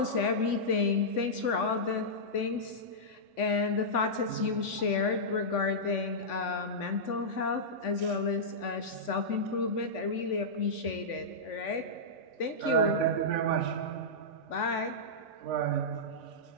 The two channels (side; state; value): right; late; 3.5 ms